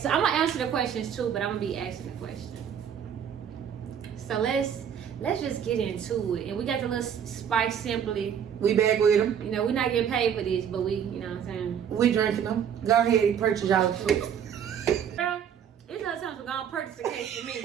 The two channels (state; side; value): quieter; left; 8.4 dB